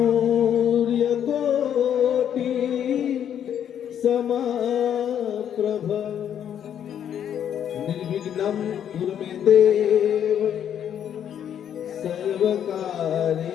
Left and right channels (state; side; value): quieter; right; 9.4 dB